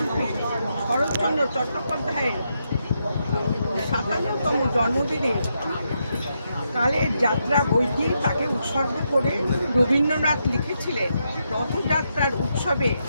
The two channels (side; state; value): both; inverted; correlation -0.82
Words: শরৎচন্দ্র চট্টোপাধ্যায়ের ৫৭তম জন্মদিনে কালের যাত্রা বইটি তাকে উৎসর্গ করে রবীন্দ্রনাথ লিখেছিলেন, রথযাত্রার উৎসবে